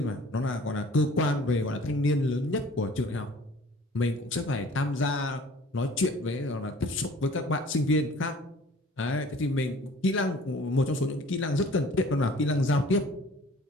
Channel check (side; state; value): both; normal; correlation 0.50